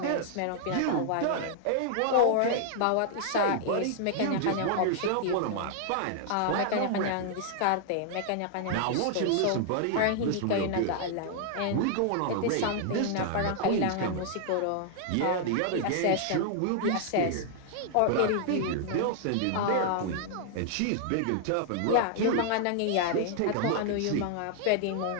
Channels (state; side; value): different; both; correlation -0.01